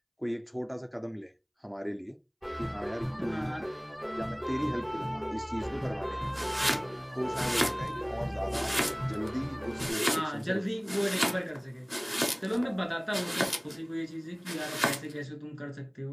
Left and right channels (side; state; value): both; identical; correlation 1.00